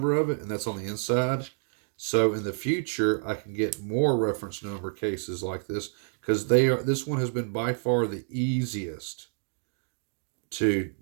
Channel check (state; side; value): silent; left; digital silence